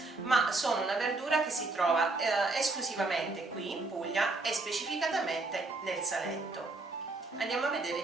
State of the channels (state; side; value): quieter; left; 3.3 dB